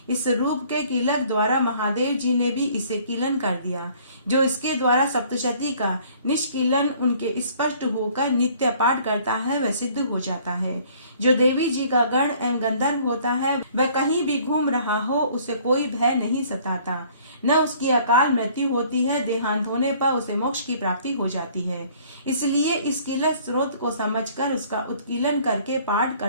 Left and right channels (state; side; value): inverted; both; correlation -0.56